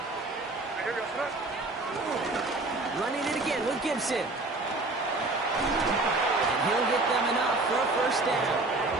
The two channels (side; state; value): left; quieter; 3.1 dB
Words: Running it again with Gibson. And he'll get them enough for a first down.